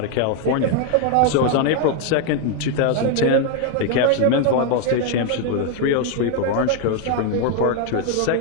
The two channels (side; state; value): both; different; correlation 0.01